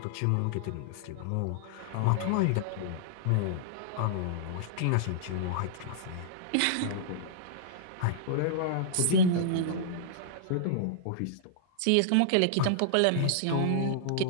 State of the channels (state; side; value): different; both; correlation -0.02